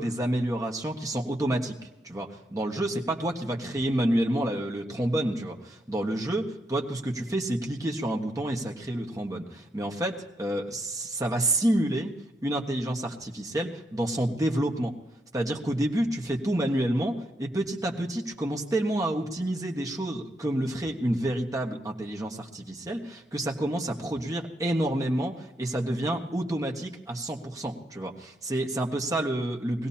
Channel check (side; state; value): both; normal; correlation 0.79